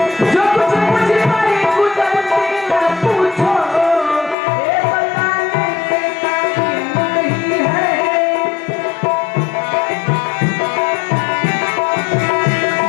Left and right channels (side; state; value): right; drops out; at 4.4 s